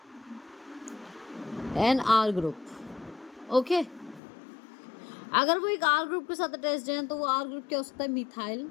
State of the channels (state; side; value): drops out; right; at 4.2 s